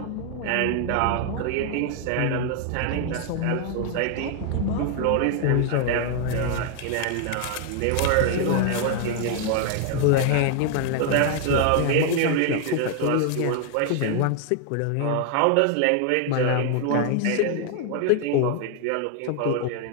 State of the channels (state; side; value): different; both; correlation 0.00